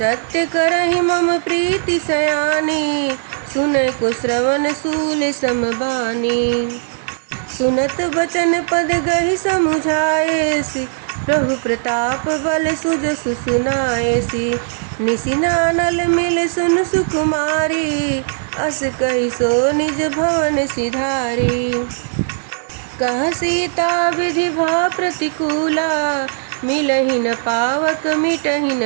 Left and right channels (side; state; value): left; silent; digital silence